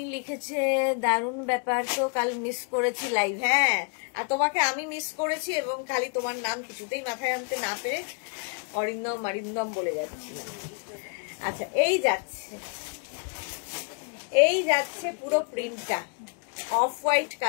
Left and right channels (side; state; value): right; quieter; 37.9 dB